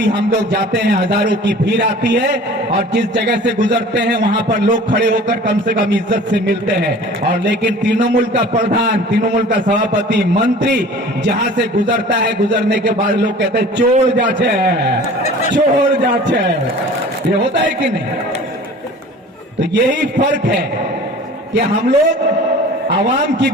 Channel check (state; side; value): normal; both; correlation 0.44